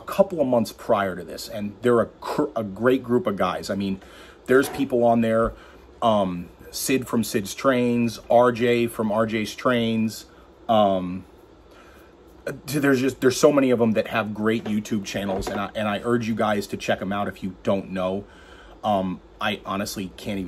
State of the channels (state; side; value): identical; both; correlation 1.00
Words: couple of months prior to this, and they're a great group of guys. I mean, there's people on there, Sid from Sid's Trains, RJ from RJ's Trains. There's so many of them that have great YouTube channels, and I urge you guys to check them out if you don't know. I honestly can't